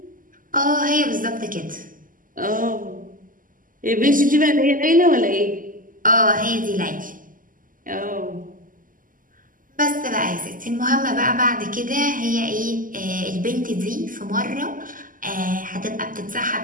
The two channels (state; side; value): late; left; 0.40 ms